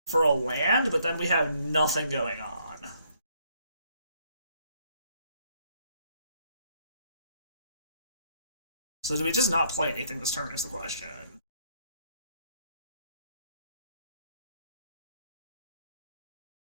for a land, but then we have nothing going on. So do we just not play anything this turn is the question.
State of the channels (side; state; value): both; inverted; correlation -0.68